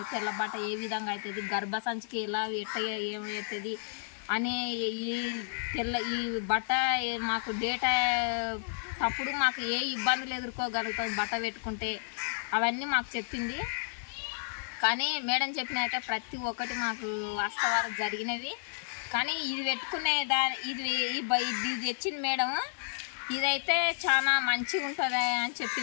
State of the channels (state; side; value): silent; right; digital silence